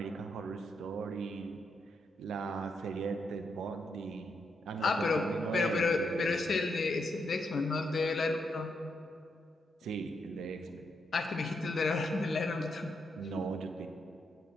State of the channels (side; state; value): both; normal; correlation 0.80